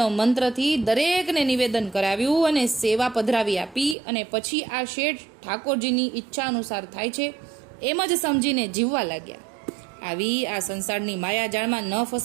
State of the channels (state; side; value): drops out; left; at 4.0 s